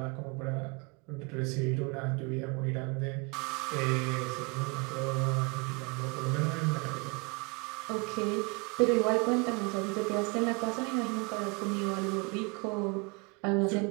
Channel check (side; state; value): left; quieter; 30.8 dB